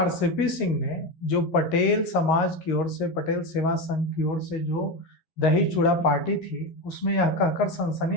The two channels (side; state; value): right; late; 11 ms